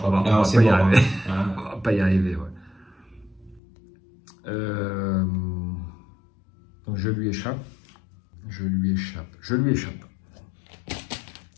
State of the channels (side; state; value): right; drops out; at 3.6 s